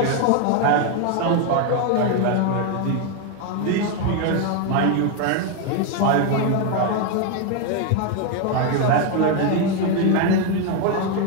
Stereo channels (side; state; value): both; different; correlation 0.01